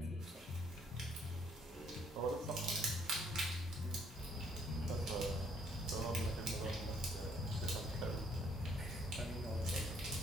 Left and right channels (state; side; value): normal; both; correlation 0.66